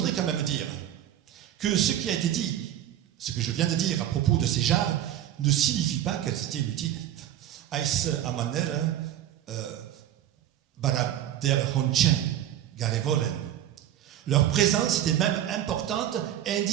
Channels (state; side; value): quieter; left; 11.6 dB